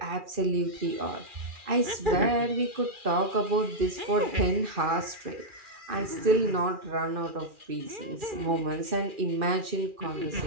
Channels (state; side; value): late; left; 2.4 ms